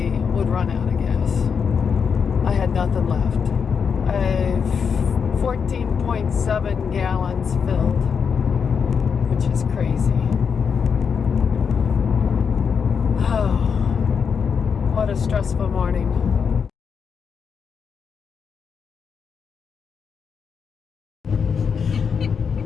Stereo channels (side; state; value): right; quieter; 6.4 dB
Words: would run out of gas. I had nothing left. I have 14.7 gallons filled, which is crazy. Oh, what a stressful morning.